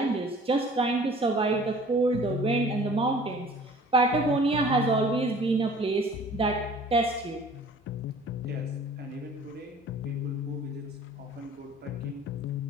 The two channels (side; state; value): both; normal; correlation 0.49